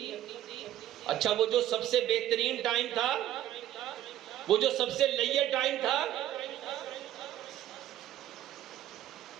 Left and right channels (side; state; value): left; quieter; 12.6 dB